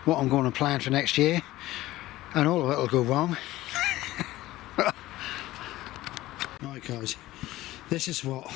what I'm going to plan for next year. And all of it will go wrong. Right guys, this is what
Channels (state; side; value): quieter; right; 16.7 dB